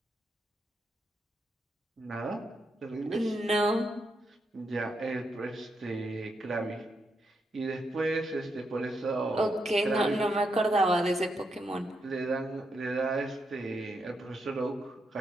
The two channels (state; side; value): normal; both; correlation 0.81